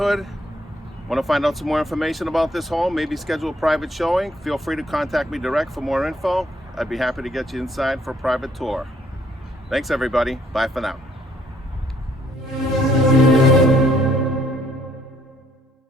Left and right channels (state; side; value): normal; both; correlation 0.66